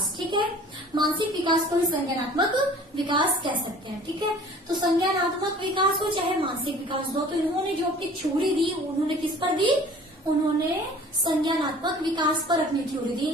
ठीक है। मानसिक विकास को ही संज्ञानात्मक विकास कह सकते हैं, ठीक है। तो संज्ञानात्मक विकास हो चाहे मानसिक विकास हो, तो इन्होंने जो अपनी थ्योरी दी, उन्होंने किस पर दी, उन्होंने संज्ञानात्मक विकास पर अपनी थ्योरी दी।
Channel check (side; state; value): both; normal; correlation 0.48